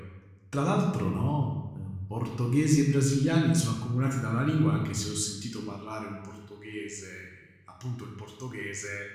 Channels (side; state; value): both; identical; correlation 1.00